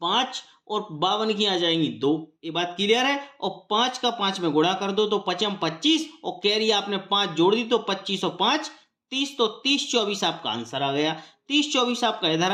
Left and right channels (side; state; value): both; identical; correlation 1.00